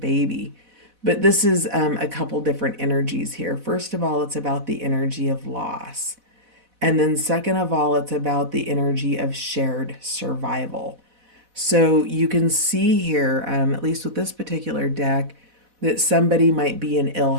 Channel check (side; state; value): left; late; 4.1 ms